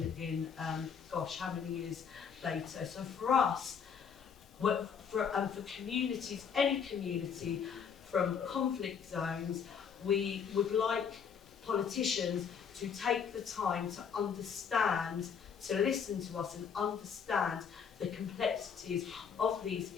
gosh, how many years later. So for us, for communities, any community from conflict zones, we would like politicians to take the time to understand, to listen to us and understand the complexities of these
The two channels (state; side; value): quieter; right; 6.9 dB